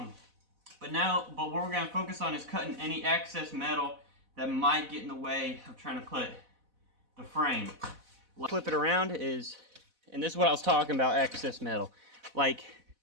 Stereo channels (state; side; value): late; left; 4.0 ms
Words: what we're going to focus on is cutting any excess metal that might get in the way of trying to put the frame. Flip it around is, and this is what I was talking about, excess metal. Like,